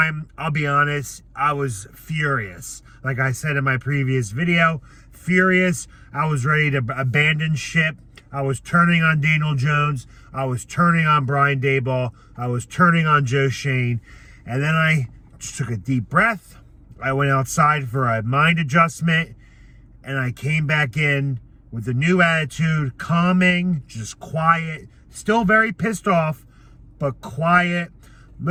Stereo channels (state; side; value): identical; both; correlation 1.00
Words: I'll be honest, I was furious. Like I said in my previous video, furious. I was ready to abandon ship. I was turning on Daniel Jones. I was turning on Brian Daboll. I was turning on Joe Shane. And then I just took a deep breath. I went outside for a mind adjustment. And I came back in with a new attitude, calming, just quiet. Still very pissed off, but quiet.